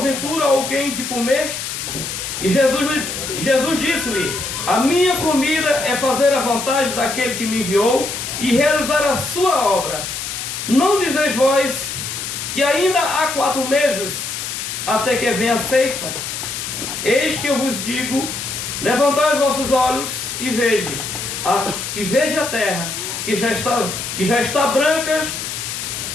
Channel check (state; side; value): noise; left; hiss, 5 dB below the sound